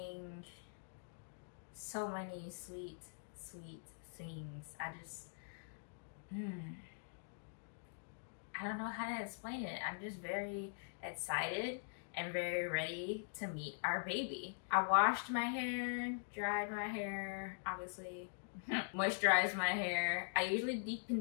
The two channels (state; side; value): silent; right; digital silence